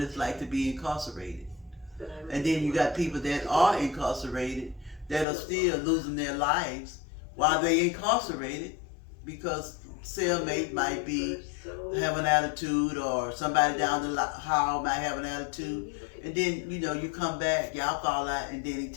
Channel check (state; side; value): drops out; right; at 5.2 s